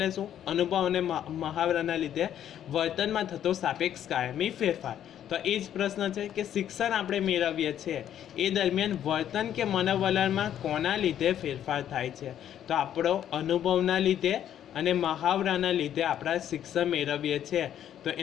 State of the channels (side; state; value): right; quieter; 10.5 dB